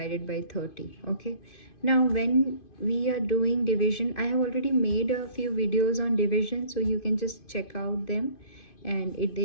by 30. Okay, now when we are doing division, I have already made a few videos on division, so you can just check out them. And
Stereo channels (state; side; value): late; right; 2.5 ms